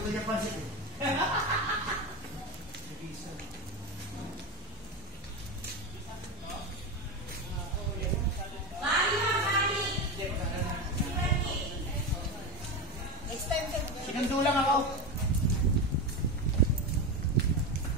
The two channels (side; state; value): both; normal; correlation 0.17